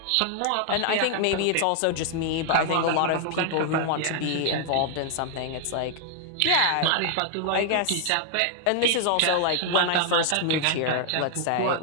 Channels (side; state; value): both; different; correlation 0.00